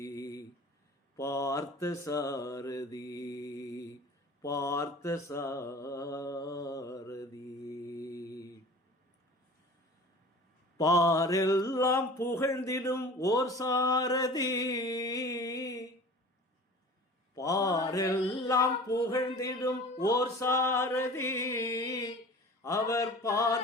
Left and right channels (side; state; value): both; normal; correlation 0.41